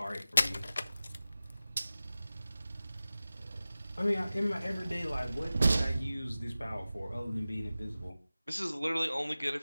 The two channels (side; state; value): both; inverted; correlation -0.96